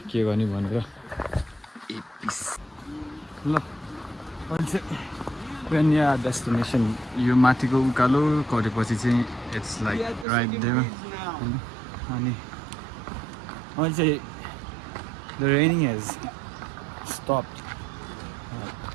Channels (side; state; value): left; drops out; at 10.2 s